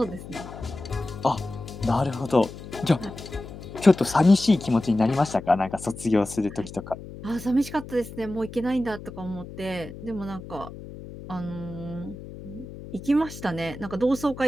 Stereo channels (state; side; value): noise; left; hum, 13 dB below the sound